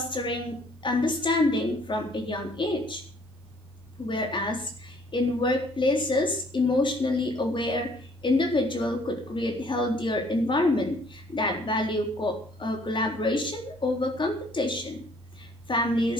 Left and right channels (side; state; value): both; normal; correlation 0.60